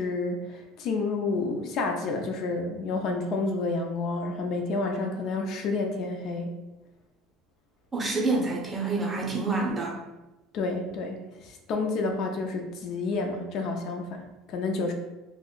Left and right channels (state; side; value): normal; both; correlation 0.44